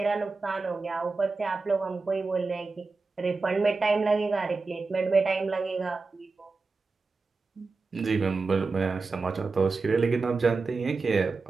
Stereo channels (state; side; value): quieter; left; 4.1 dB